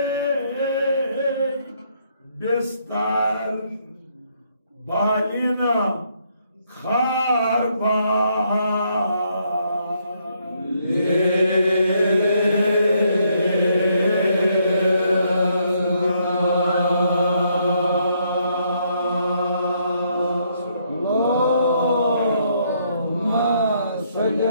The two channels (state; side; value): inverted; both; correlation -0.72